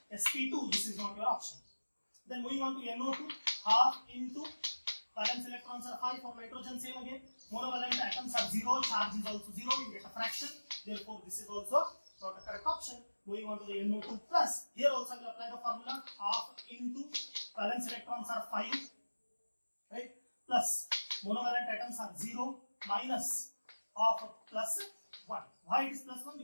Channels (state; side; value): inverted; both; correlation -1.00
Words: sp2. This is not your option. Then moving on to NO2, half into valence electrons are 5 for nitrogen, same again. Monovalent atoms are 0, charge is also 0, you get a fraction. Therefore, this is also not a correct option. Moving on to the NO2 plus, here also I will apply the formula half into valence electrons are 5, right? Plus monovalent atoms are 0 minus of plus 1. Why it is plus 1?